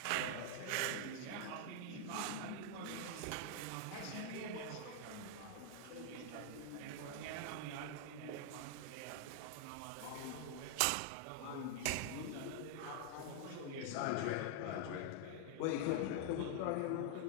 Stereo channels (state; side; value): different; both; correlation 0.00